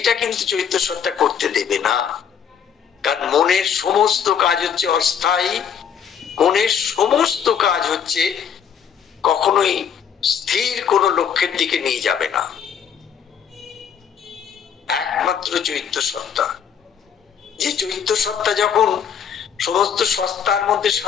কিন্তু চৈত্য সত্তা করতে দেবে না। কারণ মনের সমস্ত কাজ হচ্ছে অস্থায়ী, মনের সমস্ত কাজ হচ্ছে কখনোই স্থির কোনো লক্ষ্যের দিকে নিয়ে যাবে না। একমাত্র চৈত্য সত্তা, যে চৈত্য সত্তা যখন সমস্ত সত্তার মধ্যে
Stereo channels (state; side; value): quieter; right; 7.8 dB